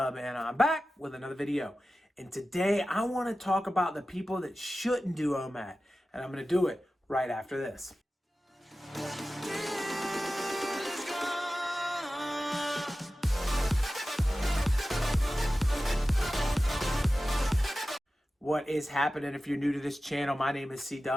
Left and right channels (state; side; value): normal; both; correlation 0.95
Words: and I'm back with another video. And today I want to talk about the people that shouldn't do OMAD, and I'm going to do it right after this. What is happening? If you're new to this channel, my name is